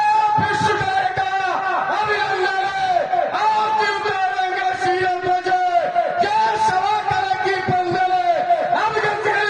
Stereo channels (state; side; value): identical; both; correlation 1.00